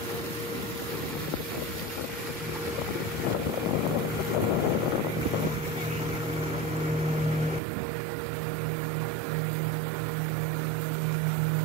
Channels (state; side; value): drops out; left; at 7.6 s